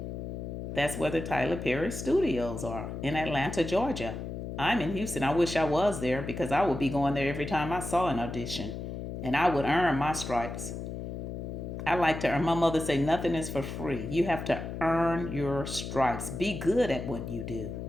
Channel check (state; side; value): noise; left; hum, 6 dB below the sound